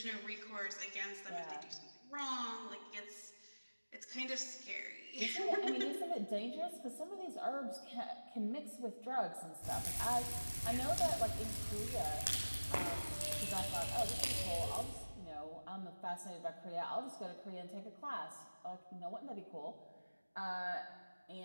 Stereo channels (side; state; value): both; inverted; correlation -1.00